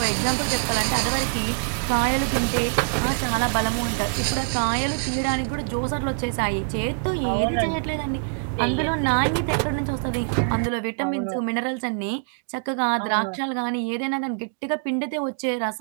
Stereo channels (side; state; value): left; silent; 61 dB below the other